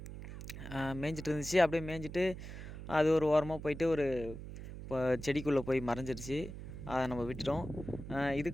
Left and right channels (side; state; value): right; noise; hum, 10 dB below the sound